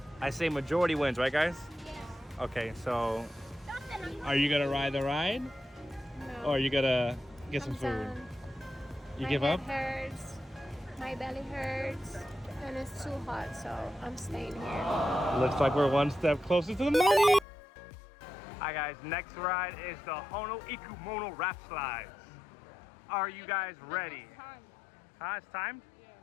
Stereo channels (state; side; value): drops out; right; at 17.4 s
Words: I say majority wins, right guys? Yes. Okay, so are you gonna ride the ride? No. Or are you gonna get some food? You give up? My head hurts, my belly hurts, and it's too hot, so I'm staying here. Looks like we're one step closer to the money. Alright guys, next ride is the Hono Ikumono Rap Slides. Are you guys ready? It's time. It's time? Yeah.